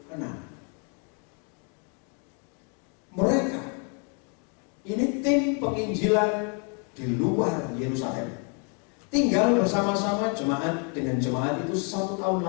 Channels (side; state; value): right; quieter; 38.4 dB